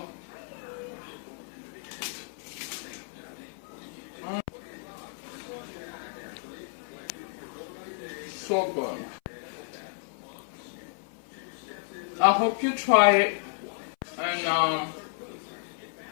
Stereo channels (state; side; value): silent; right; 56 dB below the other